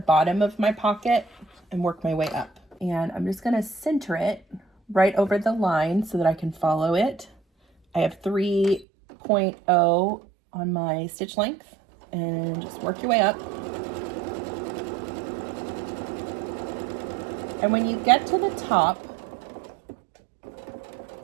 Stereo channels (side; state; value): left; drops out; at 8.8 s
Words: of my pocket and work my way up. And I'm just going to center it right over the line so that I can follow it. I have 3.0 on my stitch length, and just work your way up. And when you get to the top,